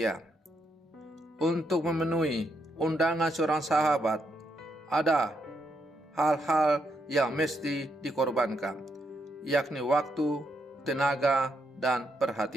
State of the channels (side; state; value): both; normal; correlation 0.79